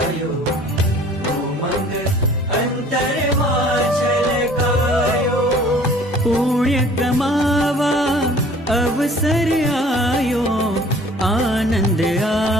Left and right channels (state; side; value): normal; both; correlation 0.51